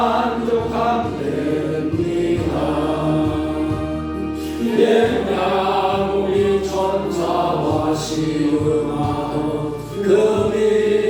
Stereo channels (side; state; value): both; identical; correlation 1.00